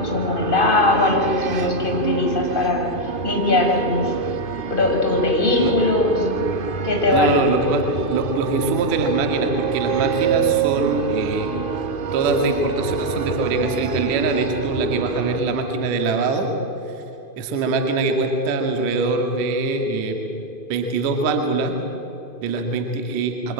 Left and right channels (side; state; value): right; late; 2.5 ms